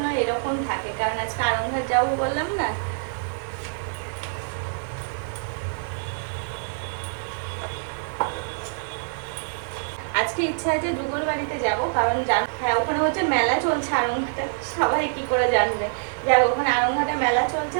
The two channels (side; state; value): left; silent; digital silence